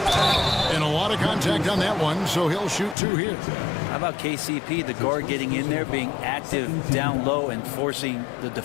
And a lot of contact on that one, so he'll shoot 2 here. How about KCP, the guard getting in there, being active down low and forcing the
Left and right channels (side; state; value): right; drops out; at 3.0 s